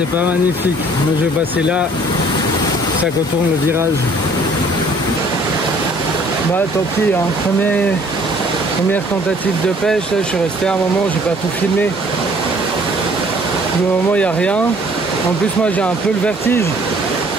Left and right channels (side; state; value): both; normal; correlation 0.57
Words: c'est pas magnifique. Moi je vais passer là, ça contourne le virage. Bah tant pis, hein. Première tentative de pêche, là, je suis resté un moment, j'ai pas tout filmé. Pour le moment il n'y a rien. En plus moi j'ai un peu le vertige.